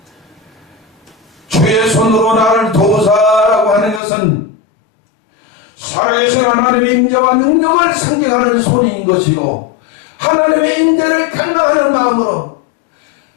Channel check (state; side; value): drops out; right; at 4.0 s